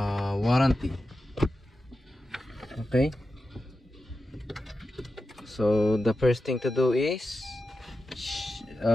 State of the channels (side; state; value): both; normal; correlation 0.91